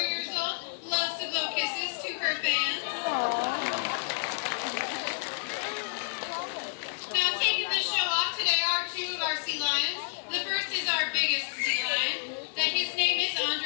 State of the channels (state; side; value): silent; right; digital silence